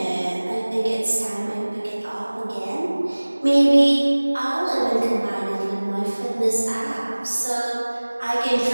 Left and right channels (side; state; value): both; inverted; correlation -1.00